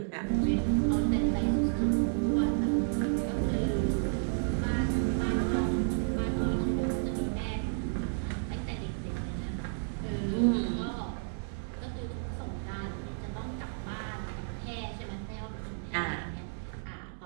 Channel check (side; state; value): left; silent; digital silence